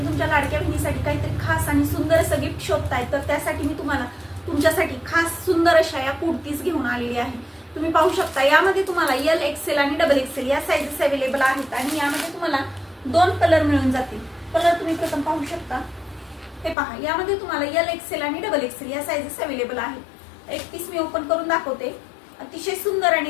तुमच्या लाडक्या बहिणीसाठी काहीतरी खास आणि सुंदर असं गिफ्ट शोधताय, तर त्यासाठी मी तुम्हाला तुमच्यासाठी खास सुंदर अशा या कुर्तीज घेऊन आलेली आहे। तुम्ही पाहू शकता यामध्ये तुम्हाला एल एक्सेल आणि डबल एक्सेल या साइजेस अवेलेबल आहेत आणि यामध्ये तुम्हाला 2 कलर मिळून जातील। कलर तुम्ही प्रथम पाहू शकता, हे पहा, यामध्ये तुम्हाला एल एक्सेल आणि डबल एक्सेल या साइजेस अवेलेबल आहेत। एक पीस मी ओपन करून दाखवते। अतिशय सुंदर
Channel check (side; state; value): right; drops out; at 16.8 s